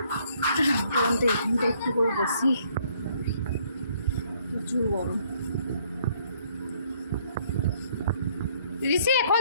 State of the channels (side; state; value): both; inverted; correlation -0.65